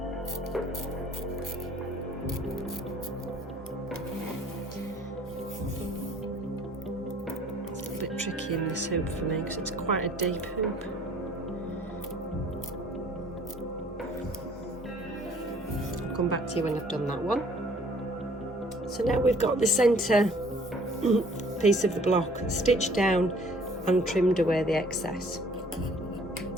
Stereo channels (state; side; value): normal; both; correlation 0.56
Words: Tricky in this hoop for me because it's quite a deep hoop. I'll come back to you when I've done that one. So now we've got the centre piece of the block stitched down and trimmed away the excess.